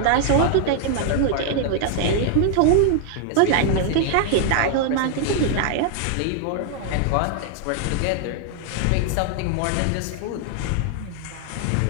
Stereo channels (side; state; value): both; different; correlation 0.00